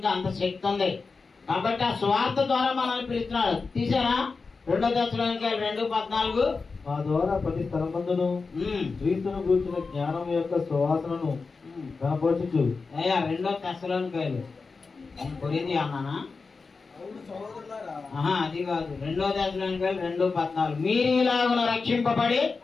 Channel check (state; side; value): quieter; right; 4.4 dB